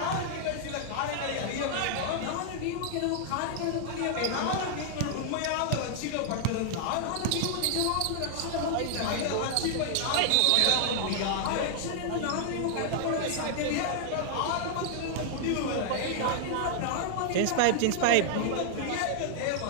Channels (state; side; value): different; both; correlation -0.01